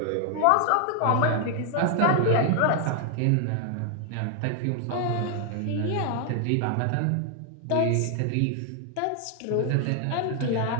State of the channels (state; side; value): different; both; correlation 0.00